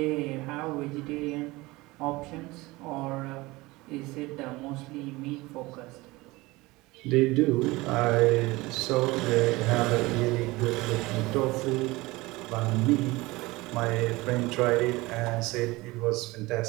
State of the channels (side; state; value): left; quieter; 21.4 dB